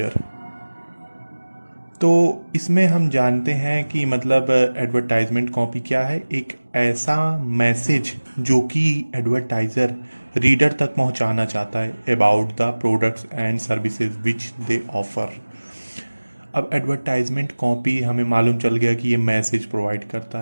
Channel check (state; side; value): inverted; both; correlation -1.00